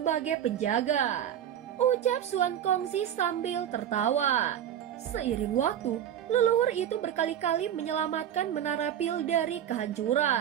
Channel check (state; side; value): quieter; left; 10.2 dB